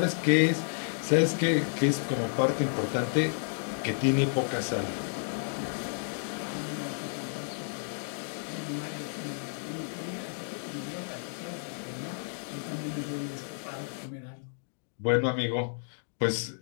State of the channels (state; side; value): silent; right; digital silence